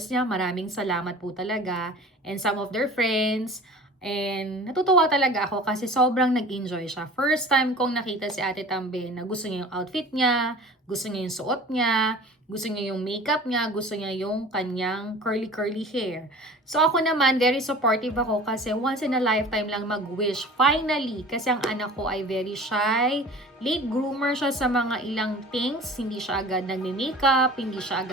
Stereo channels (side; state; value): both; normal; correlation 0.42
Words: niya. Maraming salamat po talaga. And some of their friends. And natutuwa talaga ako kasi sobrang nag-enjoy siya. First time kong nakita si Ate Tambe na gusto niya yung outfit niya, gusto niya yung suot niya, gusto niya yung makeup niya, gusto niya yung kanyang curly hair. So ako naman, very supportive ako kasi once in a lifetime lang mag-wish. Finally, kasi ang anak ko ay very shy, late groomer siya sa mga ilang things, hindi siya agad nagme-makeup, hindi siya